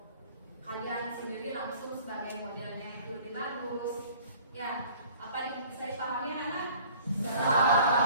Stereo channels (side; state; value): both; inverted; correlation -0.51